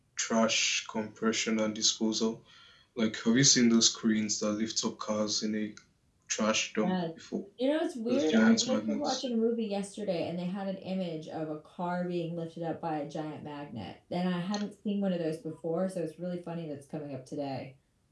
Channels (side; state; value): both; identical; correlation 1.00